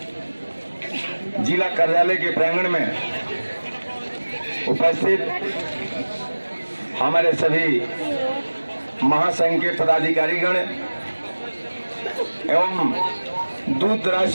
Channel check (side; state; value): both; inverted; correlation -1.00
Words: जिला कार्यालय के प्रांगण में उपस्थित हमारे सभी महासंघ के पदाधिकारीगण एवं दूर दराज